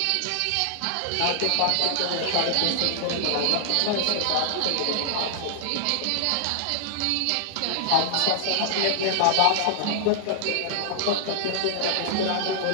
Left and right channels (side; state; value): both; different; correlation -0.01